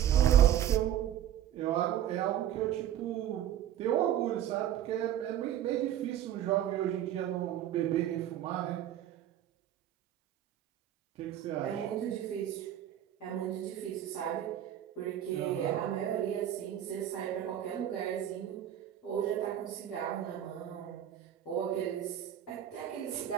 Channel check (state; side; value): quieter; left; 11.1 dB